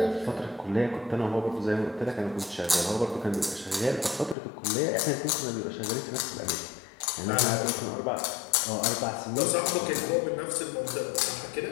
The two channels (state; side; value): drops out; right; at 4.4 s